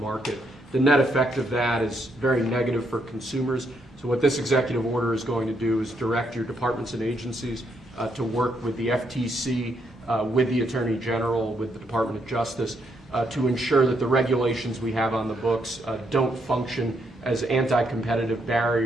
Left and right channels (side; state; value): both; normal; correlation 0.76